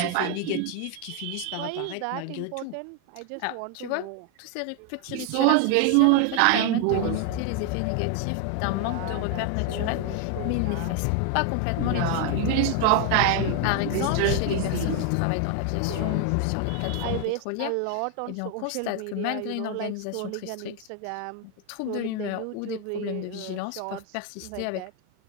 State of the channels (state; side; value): different; both; correlation 0.00